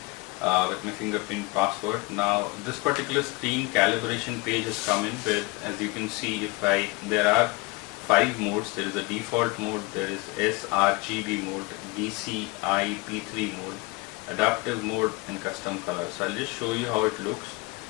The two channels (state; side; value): quieter; right; 25.5 dB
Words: with my fingerprint password. Now this particular screen calibration page has come in with, as you can see, there are 5 modes. There is a default mode, there is sRGB mode, DCI P3 mode, adaptive mode, and custom color. So I'll just show you how it looks.